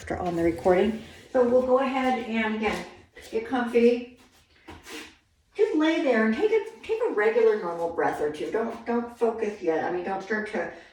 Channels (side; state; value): both; identical; correlation 1.00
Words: on the recording. So we'll go ahead and again, get comfy. Just lay there and take a regular normal breath or two. Don't focus yet. I mean, don't start to